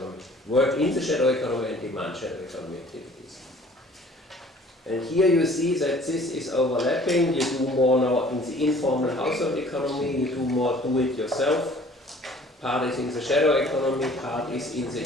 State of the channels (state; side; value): normal; both; correlation 0.52